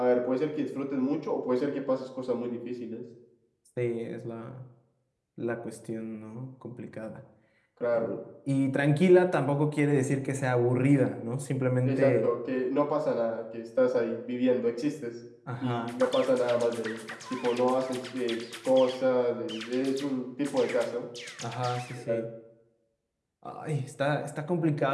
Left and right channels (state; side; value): identical; both; correlation 1.00